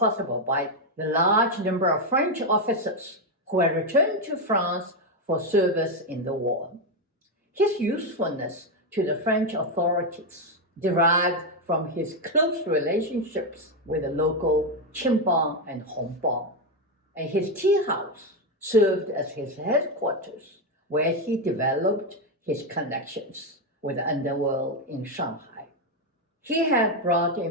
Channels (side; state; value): both; normal; correlation 0.06